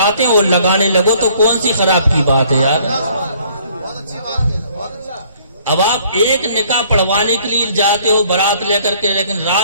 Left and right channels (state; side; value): inverted; both; correlation -0.60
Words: اور لگانے لگو تو کون سی خراب کی بات ہے یار۔ اب آپ ایک نکاح پڑھوانے کے لیے جاتے ہو برات لے کر کے، لیکن